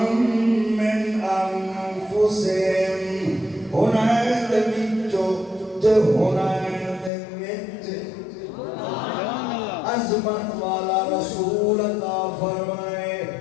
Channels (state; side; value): drops out; right; at 7.1 s